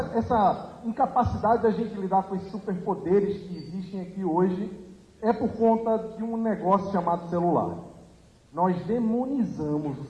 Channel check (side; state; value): both; identical; correlation 1.00